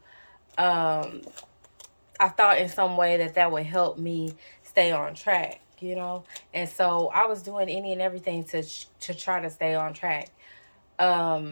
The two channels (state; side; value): inverted; both; correlation -1.00